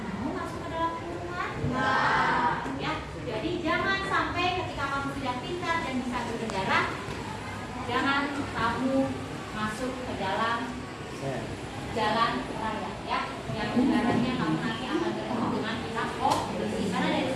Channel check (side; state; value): both; identical; correlation 1.00